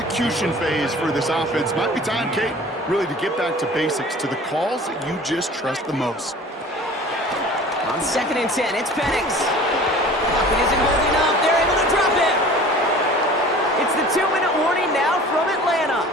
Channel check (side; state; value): both; normal; correlation 0.44